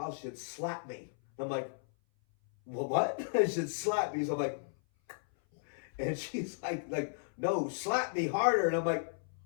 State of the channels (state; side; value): silent; right; 55 dB below the other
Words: she'd slap me. I'm like, well, what? She said, slap me. So I'm like, and she's like, no, slap me harder. And I'm like,